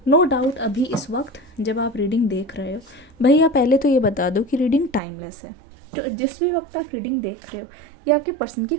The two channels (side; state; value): left; drops out; at 5.0 s